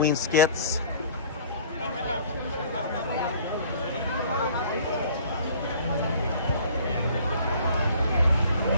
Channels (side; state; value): both; inverted; correlation -0.51